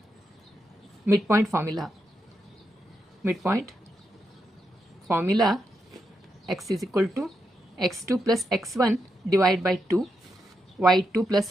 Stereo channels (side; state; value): both; normal; correlation 0.84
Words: midpoint formula, x is equal to x2 plus x1 divided by 2, y2 plus